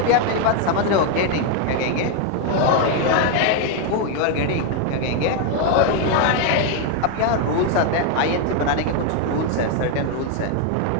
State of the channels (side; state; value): both; different; correlation 0.01